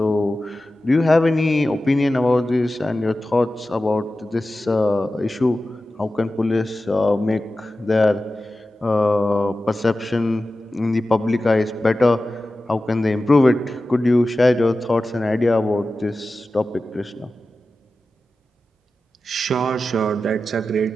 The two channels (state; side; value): normal; both; correlation 0.94